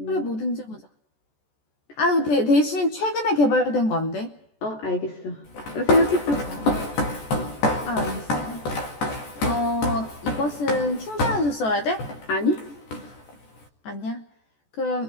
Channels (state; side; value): late; right; 14 ms